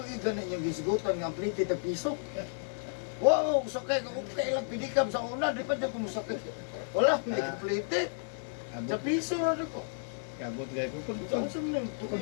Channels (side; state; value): right; silent; digital silence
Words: ninyo gisgutan nga plite ta piso. Wow, sakay ko kailang pidikam sa una, di pa dyan kumusakit. Wala, hindi complete. Sa piso na rin ko. Kabot gaya ko. Pag